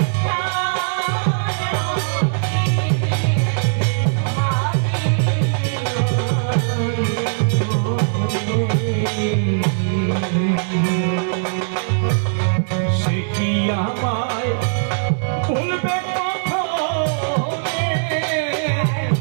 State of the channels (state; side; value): silent; left; digital silence